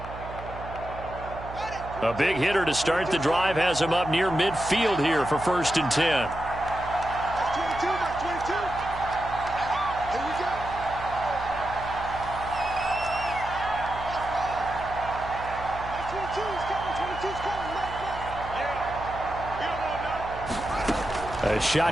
A big hitter to start the drive has him up near midfield here for 1st and 10. A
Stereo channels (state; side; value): noise; right; hum, 12 dB below the sound